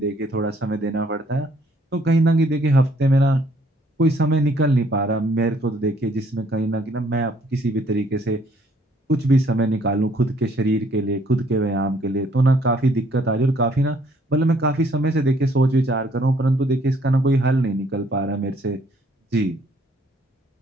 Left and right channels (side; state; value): both; normal; correlation 0.64